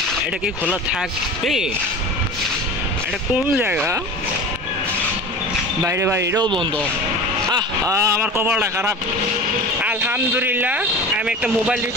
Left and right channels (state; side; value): normal; both; correlation 0.34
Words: এটা কি খোলা থাকবে? এটা কোন জায়গা? বাইরে বাইরেও বন্ধ। আমার কপালটা খারাপ। আলহামদুলিল্লাহ আমি একটা মোবাইল